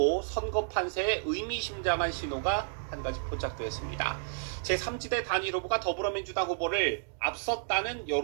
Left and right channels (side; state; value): left; silent; digital silence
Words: 선거 판세에 의미심장한 신호가 한 가지 포착되었습니다. 제3지대 단일 후보가 더불어민주당 후보를 앞섰다는